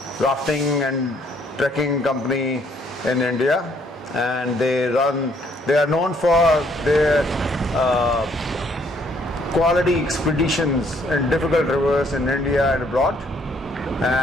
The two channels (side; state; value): both; normal; correlation 0.66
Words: rafting and trekking company in India, and they are known for their quality expeditions in difficult rivers in India and abroad.